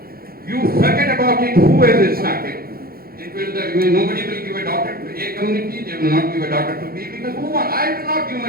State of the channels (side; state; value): left; late; 0.44 ms